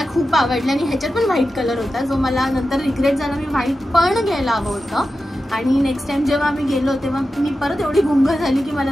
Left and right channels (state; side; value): normal; both; correlation 0.91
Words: खूप आवडली आणि ह्याच्यात पण व्हाईट कलर होता जो मला नंतर रिग्रेट झाला. मी व्हाईट पण घ्यायला हवं होतं आणि नेक्स्ट टाइम जेव्हा आम्ही गेलो तेव्हा मी परत एवढी गुंग झाली की